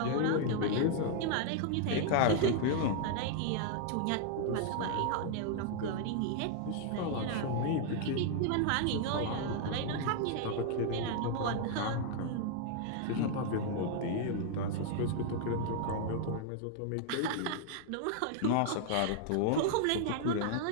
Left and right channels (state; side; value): different; both; correlation 0.00